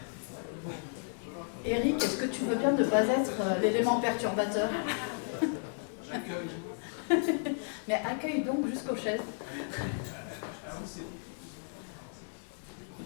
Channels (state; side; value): silent; right; digital silence